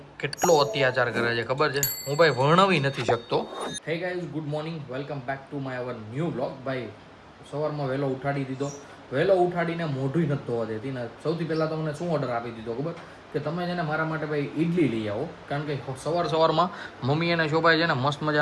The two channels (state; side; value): identical; both; correlation 1.00